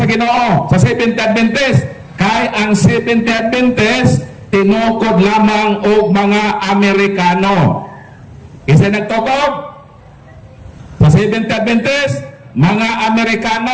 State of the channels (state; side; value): identical; both; correlation 1.00